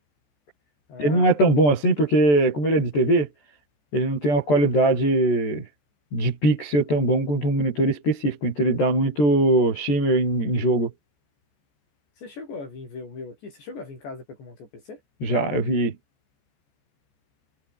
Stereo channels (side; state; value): right; late; 14 ms